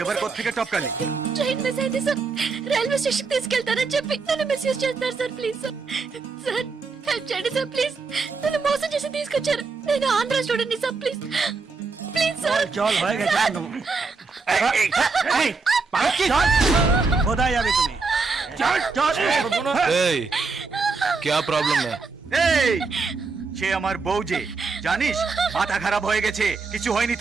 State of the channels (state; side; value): quieter; left; 4.4 dB